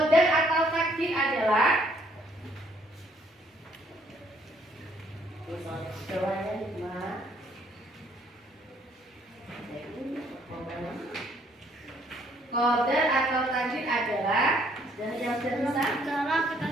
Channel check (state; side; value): normal; both; correlation 0.66